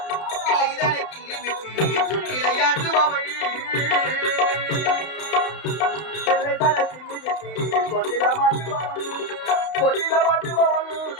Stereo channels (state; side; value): late; right; 32 ms